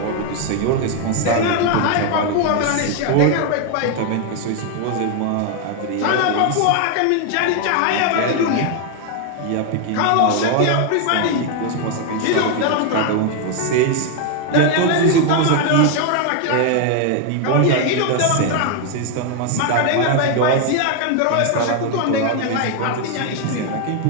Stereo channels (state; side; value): different; both; correlation 0.01